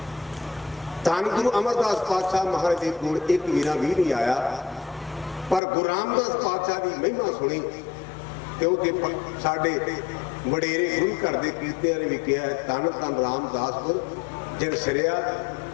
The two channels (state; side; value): drops out; right; at 5.6 s